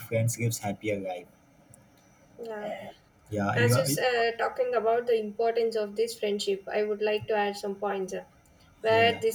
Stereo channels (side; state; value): both; identical; correlation 1.00